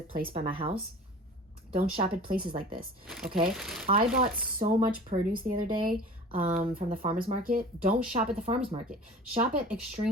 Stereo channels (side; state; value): both; normal; correlation 0.41